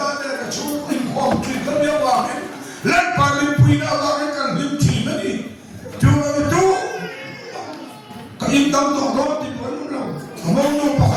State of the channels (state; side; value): identical; both; correlation 1.00